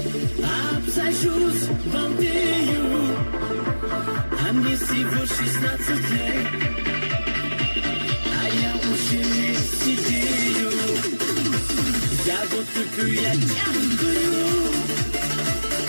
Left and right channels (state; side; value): inverted; both; correlation -1.00